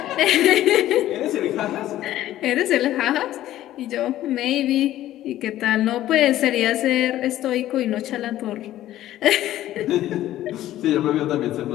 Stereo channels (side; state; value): right; quieter; 13.7 dB